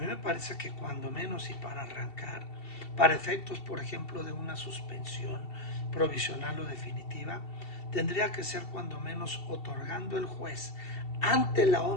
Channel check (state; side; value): late; right; 2.7 ms